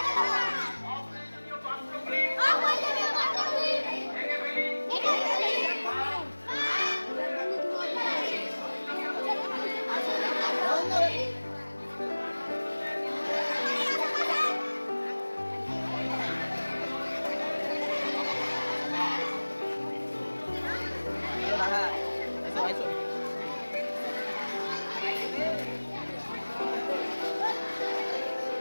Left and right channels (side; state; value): both; inverted; correlation -1.00